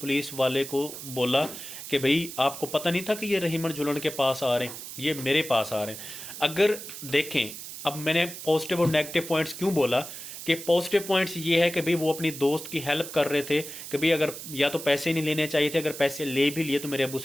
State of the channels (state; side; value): noise; right; hiss, 10 dB below the sound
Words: वाले को बोला कि भाई आपको पता नहीं था कि ये रहीमन झुलन के पास आ रहे हैं, ये मेरे पास आ रहे हैं। अगर देखें, अब मैंने पॉजिटिव और नेगेटिव पॉइंट्स क्यों बोला कि पॉजिटिव पॉइंट्स ये है कि भाई वो अपनी दोस्त की हेल्प कर रहे थे कि भाई अगर या तो पैसे नहीं लेने चाहिए थे, अगर पैसे ले भी लिए तो मेरे अब्बू